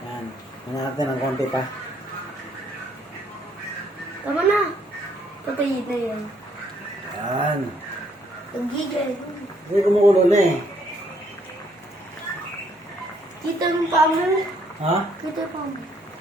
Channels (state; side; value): normal; both; correlation 0.68